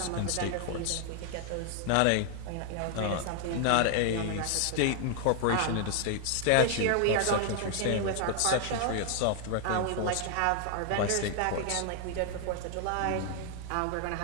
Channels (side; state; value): both; different; correlation 0.00